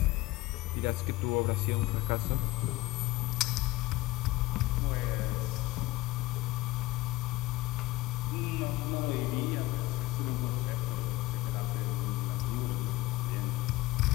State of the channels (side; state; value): right; quieter; 18.9 dB